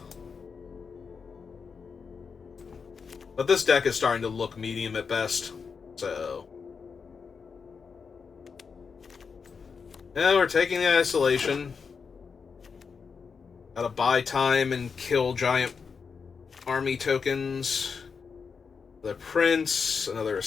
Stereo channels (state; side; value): quieter; right; 5.6 dB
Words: But this deck is starting to look medium at best. So... yeah, we're taking the Isolation. Gotta buy time and kill giant army tokens. The Prince, another